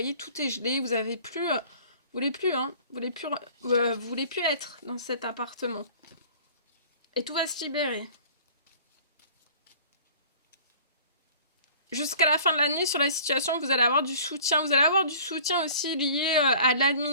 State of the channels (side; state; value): both; inverted; correlation -0.47